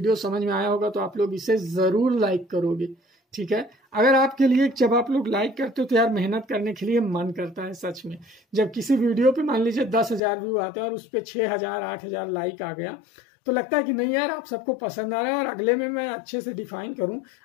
समझ में आया होगा, तो आप लोग इसे जरूर लाइक करोगे। ठीक है, अगर आपके लिए, जब आप लोग लाइक करते हो तो यार मेहनत करने के लिए मन करता है सच में। जब किसी वीडियो पे मान लीजिए 10,000 व्यू आते हैं और उस पर 6,000 8,000 लाइक आ गया, तो लगता है कि नहीं यार आप सबको पसंद आ रहा है और अगले में मैं अच्छे से डिफाइन करूं,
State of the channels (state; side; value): drops out; right; at 10.2 s